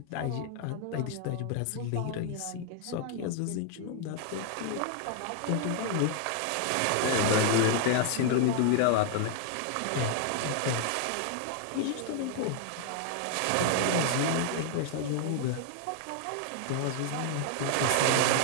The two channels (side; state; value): both; different; correlation 0.00